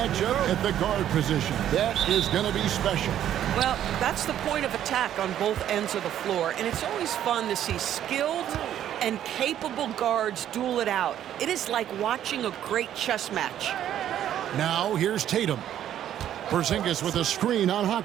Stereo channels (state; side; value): quieter; left; 11.0 dB